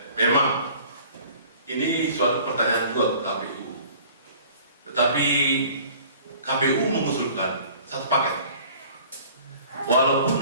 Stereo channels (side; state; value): both; inverted; correlation -0.49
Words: memang ini suatu pertanyaan juga ke KPU. Tetapi KPU mengusulkan satu paket.